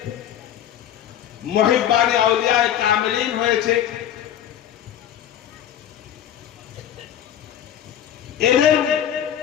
মুহিব্বানে আউলিয়ায়ে কামিলিন হয়েছে। এদেরকে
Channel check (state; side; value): quieter; right; 10.6 dB